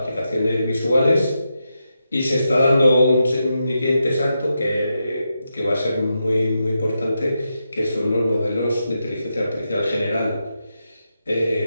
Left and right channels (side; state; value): both; inverted; correlation -0.86